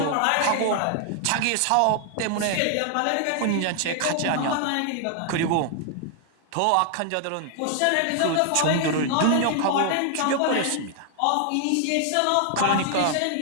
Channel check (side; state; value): both; different; correlation 0.00